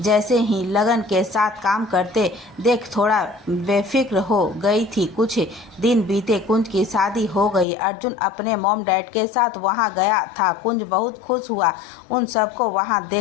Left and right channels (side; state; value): right; drops out; at 7.7 s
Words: ही लगन के साथ काम करते देख थोड़ा बेफिक्र हो गई थी। कुछ दिन बीते, कुंज की शादी हो गई। अर्जुन अपने मॉम डैड के साथ वहां गया था। कुंज बहुत खुश हुआ उन सबको वहां